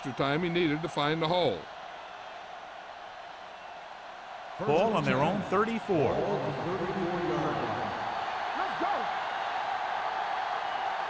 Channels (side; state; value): both; identical; correlation 1.00